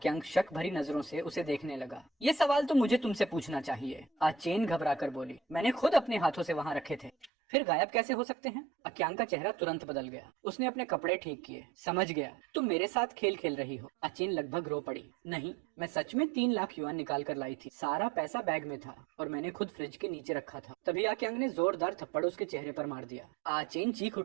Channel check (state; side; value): drops out; left; at 7.3 s